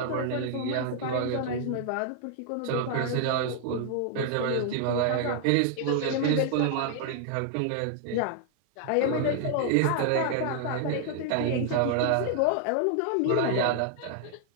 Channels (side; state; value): both; different; correlation 0.00